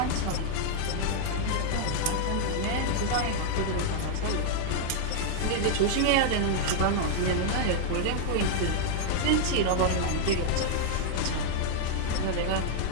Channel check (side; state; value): both; different; correlation -0.01